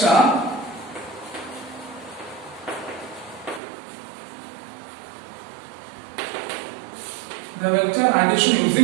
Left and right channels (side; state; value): left; drops out; at 3.6 s